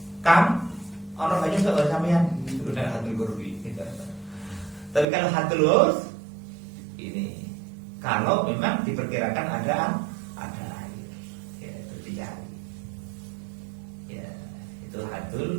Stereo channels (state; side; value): drops out; left; at 5.1 s